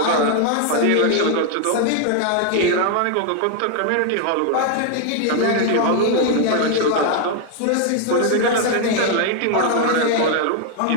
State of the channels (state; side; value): different; both; correlation 0.00